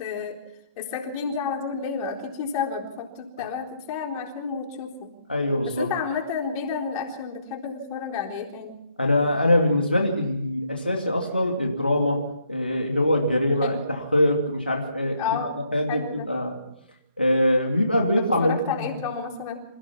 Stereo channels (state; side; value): inverted; both; correlation -0.72